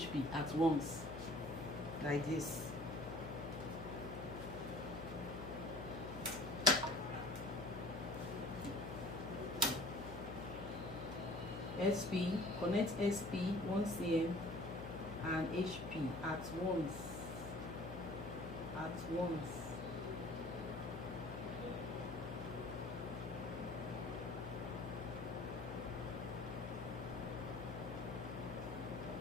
at once, like this. Connect SP 1 cm and HP at once.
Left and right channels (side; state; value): left; noise; hum, 8 dB below the sound